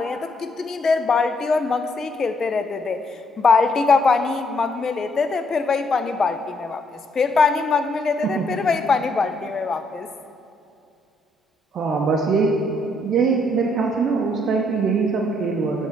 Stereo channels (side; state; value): both; normal; correlation 0.71